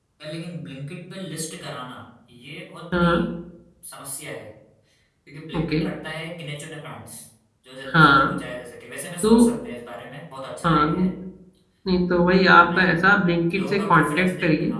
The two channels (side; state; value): both; identical; correlation 1.00